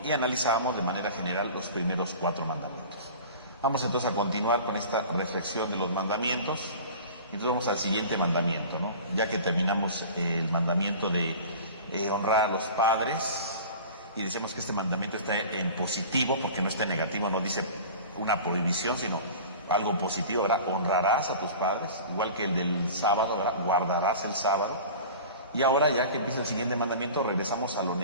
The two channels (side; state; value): both; inverted; correlation -0.38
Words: y analizábamos de manera general los primeros 4 mandamientos. Vamos entonces a continuar con esta reflexión de los mandamientos. Entonces vamos al siguiente mandamiento, ¿no? Ya que terminamos el mandamiento de honrar a los padres, y decimos que este mandamiento está en positivo, porque no está en negativo, no dice una prohibición, sino algo positivo, ¿verdad? Honrarás a tus padres, igual que el del sábado, ¿verdad? Guardarás el sábado. Y ahora, ya que empieza el siguiente mandamiento, regresamos a lo